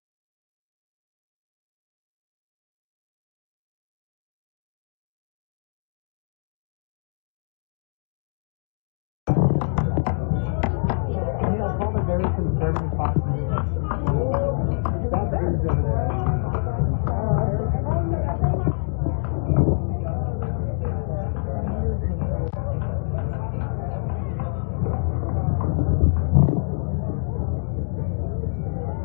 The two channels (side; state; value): right; silent; digital silence